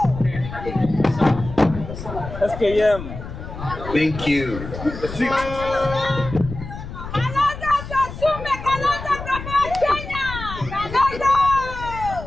SKM. Thank you.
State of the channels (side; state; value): left; noise; rumble, 10 dB below the sound